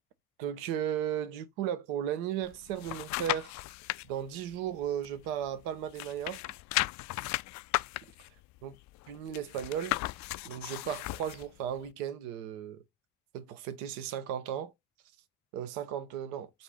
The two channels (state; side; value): normal; both; correlation 0.08